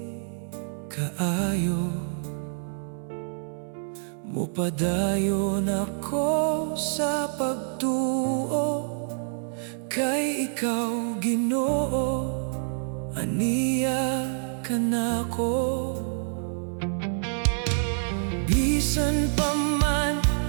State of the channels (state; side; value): silent; left; digital silence